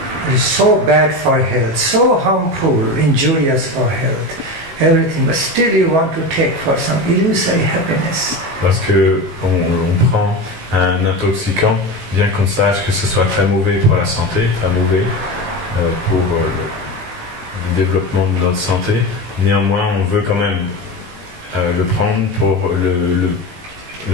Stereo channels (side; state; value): left; late; 18 ms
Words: is so bad for health, so harmful, injurious for health, everything, but still you want to take for some illusory happiness. Parce que on prend un intoxicant, bien qu'on sache que ce soit très mauvais pour la santé, très mauvais pour le développement de notre santé, néanmoins on veut quand même le prendre pour